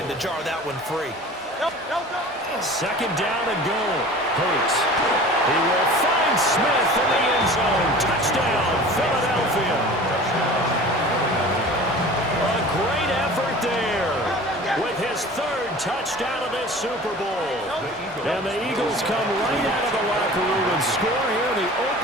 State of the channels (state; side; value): normal; both; correlation 0.41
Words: to jar that one free. 2nd down and goal. Hurts. He will find Smith in the end zone. Touchdown, Philadelphia. A great effort there with his 3rd touchdown of this Super Bowl. And the Eagles come right out of the locker room and score here in the